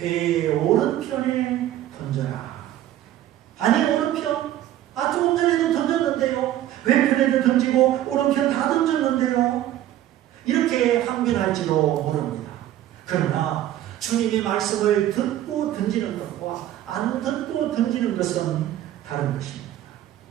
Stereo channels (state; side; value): quieter; left; 12.8 dB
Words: 오른편에 던져라. 아니 오른편? 조금 전에도 던졌는데요. 왼편에도 던지고 오른편 다 던졌는데요. 이렇게 항변할지도 모릅니다. 그러나 주님의 말씀을 듣고 던지는 것과 안 듣고 던지는 것은 다른 것입니다.